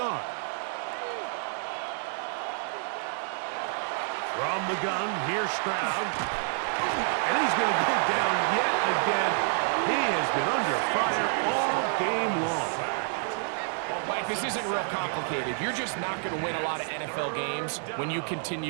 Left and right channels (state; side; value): silent; left; 59 dB below the other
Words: From the gun, here's Stroud. And he's going to go down yet again. He has been under fire all game long. Mike, this isn't real complicated. You're just not going to win a lot of NFL games when you